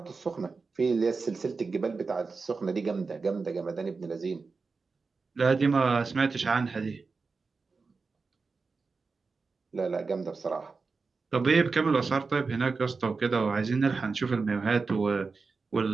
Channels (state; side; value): quieter; left; 4.4 dB